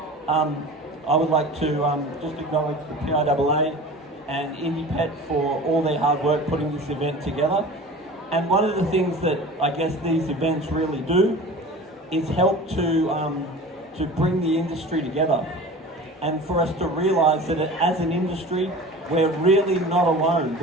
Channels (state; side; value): normal; both; correlation 0.38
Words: I would like to just acknowledge the PIAA and IndiePet for all their hard work putting this event together. And one of the things that I guess these events really do is help to bring the industry together, and for us to realise that as an industry, we're really not alone.